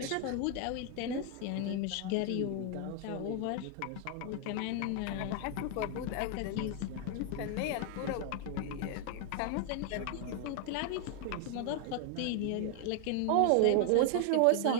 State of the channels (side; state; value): both; different; correlation 0.00